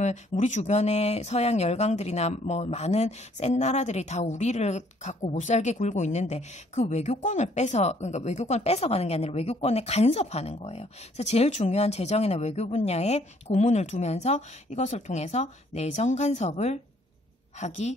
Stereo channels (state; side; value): normal; both; correlation 0.64